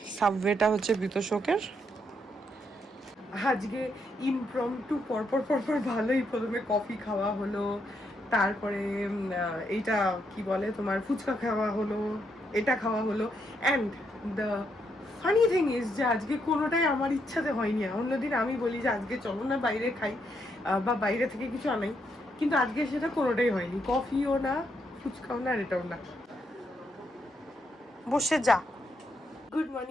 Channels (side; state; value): both; normal; correlation 0.77